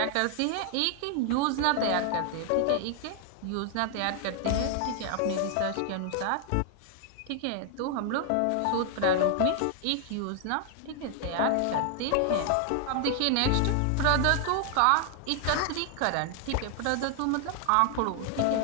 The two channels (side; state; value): both; different; correlation 0.00